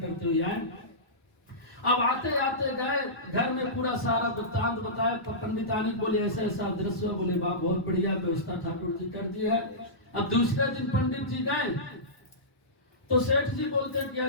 हुए आए। अब आते आते गए, घर में पूरा सारा वृत्तांत बताया। पंडितानी बोले ऐसा ऐसा दृश्य, बोले वाह बहुत बढ़िया व्यवस्था ठाकुर जी कर दी है, अब दूसरे दिन पंडित जी गए तो सेठ जी बोलते हैं कि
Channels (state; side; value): late; right; 1.0 ms